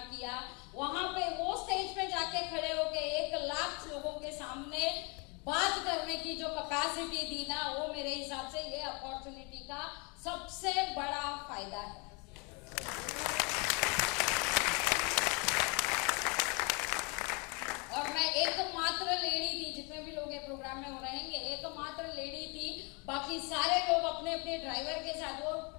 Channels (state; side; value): quieter; right; 31.7 dB